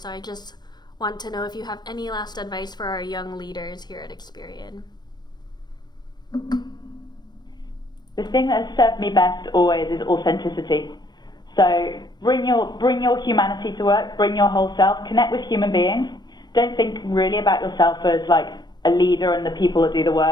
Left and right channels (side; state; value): right; late; 0.21 ms